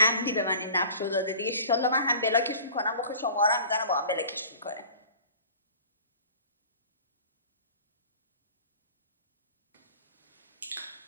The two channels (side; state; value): both; inverted; correlation -0.45